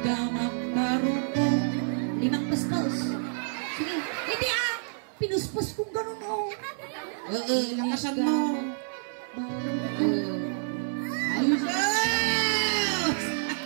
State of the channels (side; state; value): left; silent; 59 dB below the other